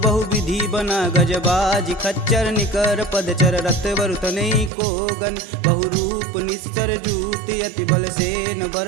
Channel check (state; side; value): drops out; left; at 4.7 s